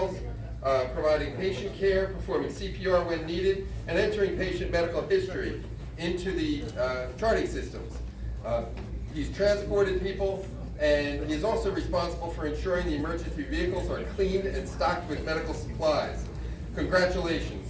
providing patient care, performing CPR when needed, and entering patient medical history into the charting systems. He's transported people, and he is also responsible for ensuring the emergency vehicles are cleaned and stocked with medical supplies.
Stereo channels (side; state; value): both; identical; correlation 1.00